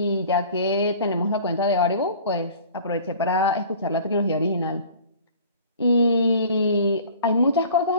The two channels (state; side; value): inverted; both; correlation -0.46